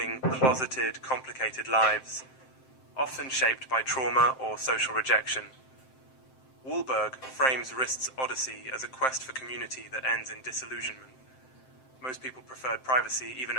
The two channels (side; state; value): right; late; 7.7 ms